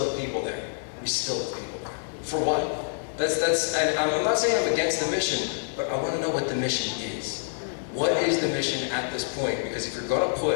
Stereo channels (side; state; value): right; silent; 60 dB below the other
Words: have people there. We still have people there. For what? And I'm not saying I'm against the mission, but I want to know what the mission is. What is the mission at this point? Because if you're going to